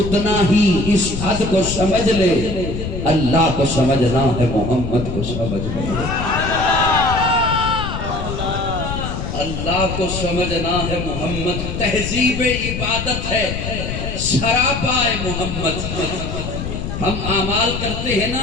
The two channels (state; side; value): noise; left; rumble, 5 dB below the sound